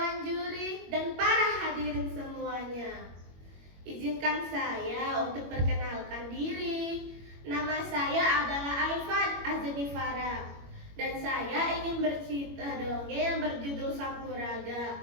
Juri, dan para hadirin semuanya. Izinkan saya untuk perkenalkan diri. Nama saya adalah Aifat Azanifara, dan saya ingin bercerita dongeng yang berjudul Sampuraga,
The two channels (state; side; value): late; left; 21 ms